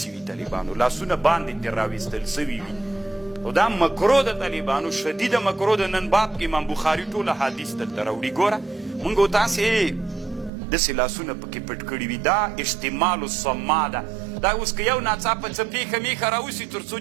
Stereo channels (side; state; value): left; drops out; at 10.5 s